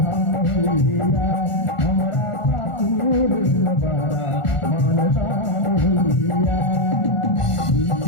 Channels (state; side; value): late; right; 1.4 ms